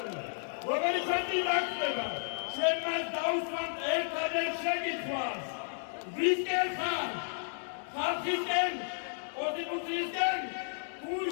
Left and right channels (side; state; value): right; silent; digital silence